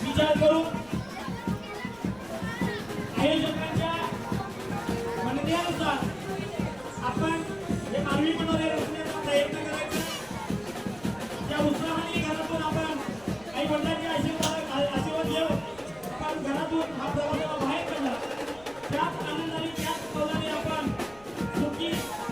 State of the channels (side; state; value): left; noise; rumble, 24 dB below the sound